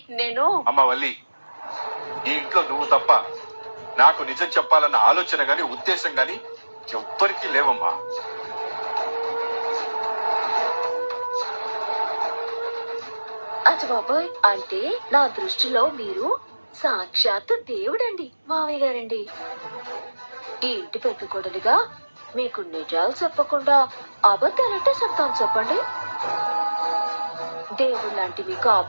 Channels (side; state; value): both; inverted; correlation -1.00